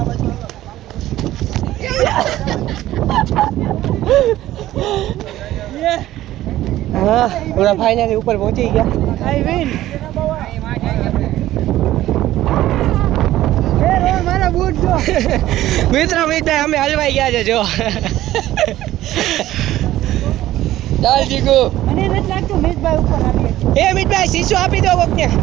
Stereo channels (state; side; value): quieter; left; 14.6 dB